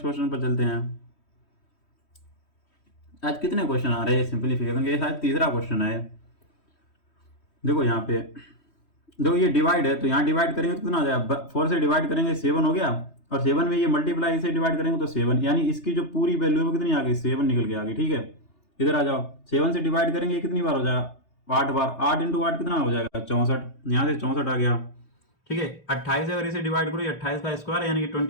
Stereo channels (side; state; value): right; late; 3.1 ms